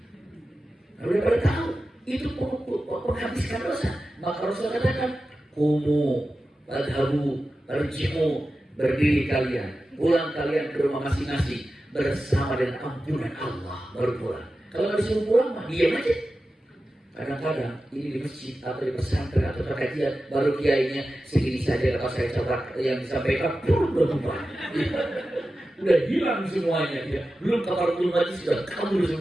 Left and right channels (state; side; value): normal; both; correlation 0.93